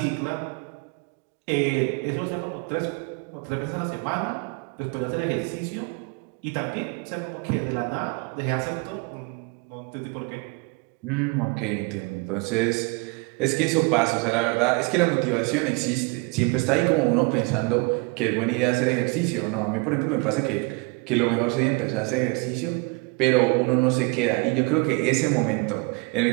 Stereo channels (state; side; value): quieter; left; 29.0 dB